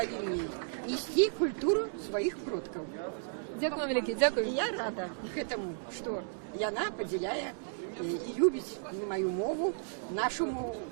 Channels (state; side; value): silent; left; digital silence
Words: несці культуру сваіх продкаў. Дзякую вам вялікі, дзякую. Я рада гэтаму, што яна падзяляе і любіць маю мову, нашу мову,